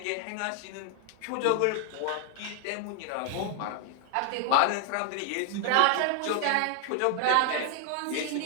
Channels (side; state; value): both; different; correlation 0.00